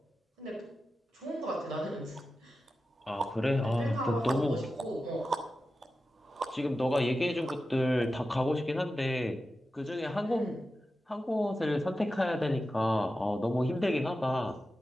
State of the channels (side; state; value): both; normal; correlation 0.92